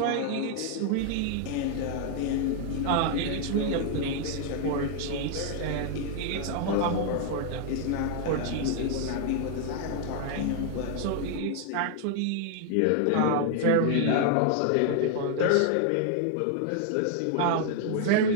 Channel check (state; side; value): different; both; correlation 0.00